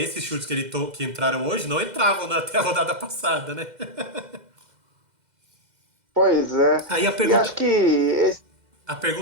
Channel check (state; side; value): late; left; 2.0 ms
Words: chutes que entraram hoje não entravam até a rodada passada, né? Pois é. Aí E acho que a